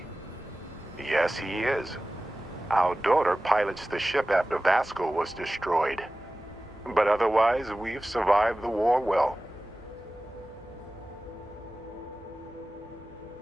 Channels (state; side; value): normal; both; correlation 0.96